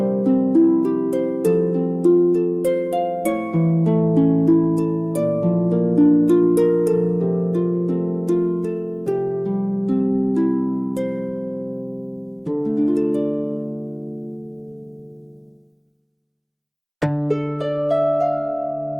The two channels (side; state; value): both; identical; correlation 1.00